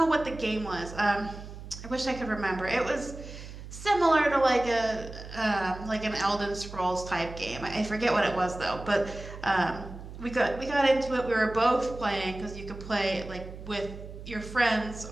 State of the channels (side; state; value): right; noise; hum, 13 dB below the sound